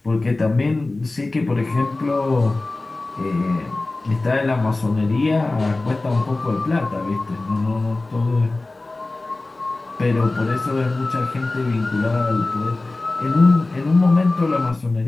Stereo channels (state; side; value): quieter; right; 3.1 dB